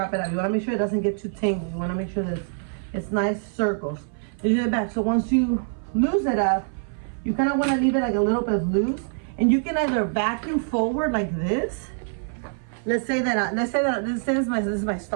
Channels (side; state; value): left; silent; 57 dB below the other